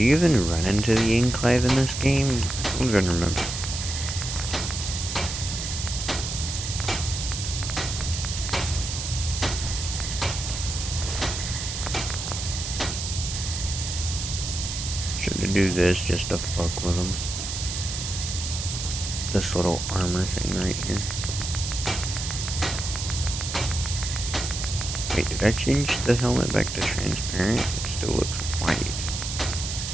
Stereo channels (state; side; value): noise; right; hiss, 5 dB below the sound